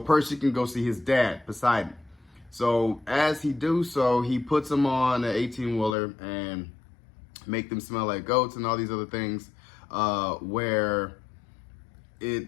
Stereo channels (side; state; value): right; drops out; at 6.0 s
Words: can go see his dad, Poseidon. So as he do so, he puts them on an 18-wheeler and make them smell like goats and all these other things where they